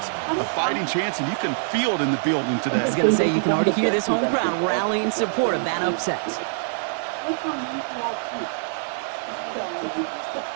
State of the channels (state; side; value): silent; left; digital silence